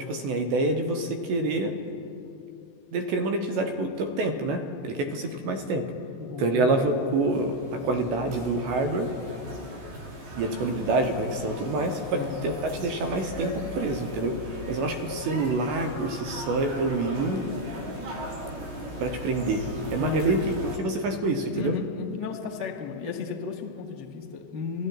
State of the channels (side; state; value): left; late; 14 ms